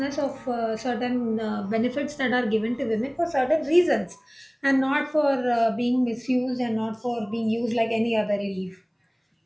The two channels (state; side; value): identical; both; correlation 1.00